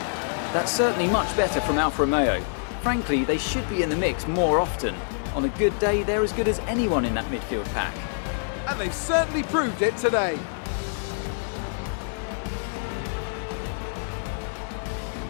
That's certainly much better from Alfa Romeo. Frankly, they should be in the mix more often. On a good day, they're as good as anyone in that midfield pack. And they've certainly proved it today.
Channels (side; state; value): right; silent; digital silence